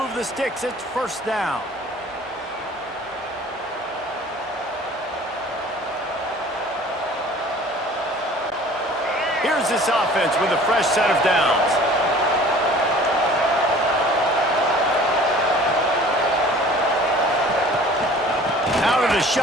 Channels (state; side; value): normal; both; correlation 0.48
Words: the sticks. It's first down. Here's this offense with a fresh set of downs. Out of the